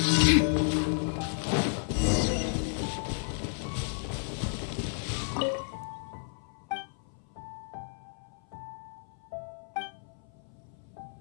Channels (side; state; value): right; silent; 56 dB below the other